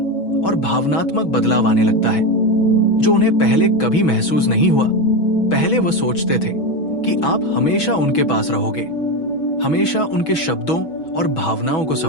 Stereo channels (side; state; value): right; late; 6.2 ms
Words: और भावनात्मक बदलाव आने लगता है, जो उन्हें पहले कभी महसूस नहीं हुआ। पहले वो सोचते थे कि आप हमेशा उनके पास रहोगे, हमेशा उनके शब्दों और भावनाओं को